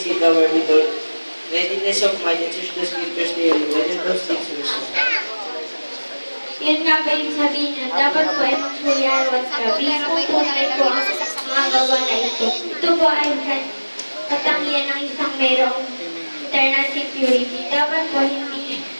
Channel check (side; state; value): both; inverted; correlation -1.00